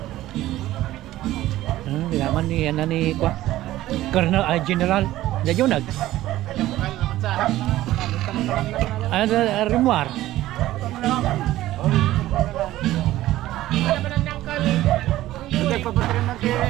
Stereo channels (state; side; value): quieter; left; 15.2 dB